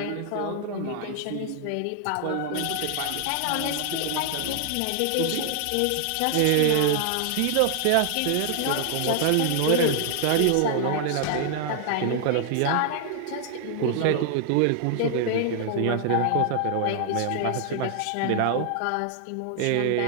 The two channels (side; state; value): both; different; correlation 0.00